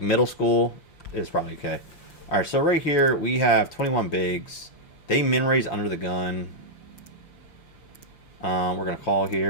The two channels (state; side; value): late; right; 5.8 ms